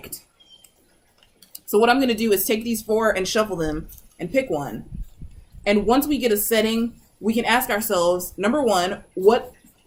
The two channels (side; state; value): both; identical; correlation 1.00